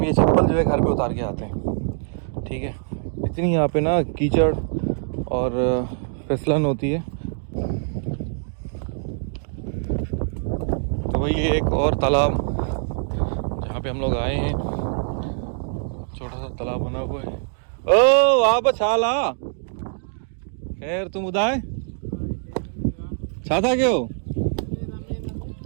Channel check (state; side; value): silent; left; digital silence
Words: ये चप्पल जो है घर पे उतार के आते हैं, ठीक है। इतनी यहाँ पे ना कीचड़ और फिसलन होती है। तो वही एक और तालाब जहाँ पे हम लोग आए हैं, छोटा सा तालाब बना हुआ है। ओ वाह बछाला, खैर तुम उदाय छाता क्यों?